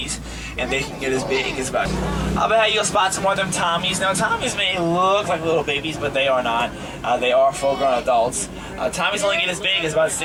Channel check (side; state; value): both; identical; correlation 1.00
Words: and they can get as big as about. I'll bet you'll spot some more of them Tommies. Now, Tommies may look like little babies, but they are not. They are full-grown adults. Tommies only get as big as about